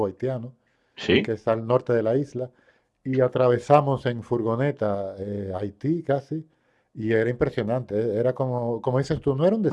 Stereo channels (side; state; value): both; identical; correlation 1.00